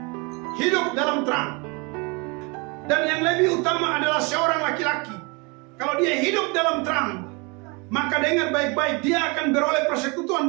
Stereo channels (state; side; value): quieter; left; 29.7 dB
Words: hidup dalam terang. Dan yang lebih utama adalah seorang laki-laki, kalau dia hidup dalam terang, maka dengar baik-baik, dia akan beroleh persekutuan